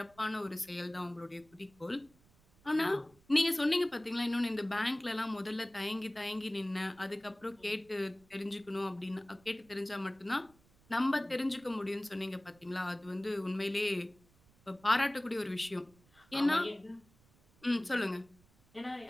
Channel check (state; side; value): noise; right; rumble, 30 dB below the sound